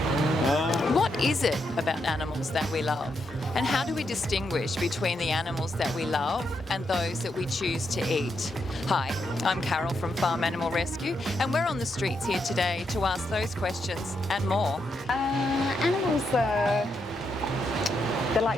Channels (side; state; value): both; normal; correlation 0.81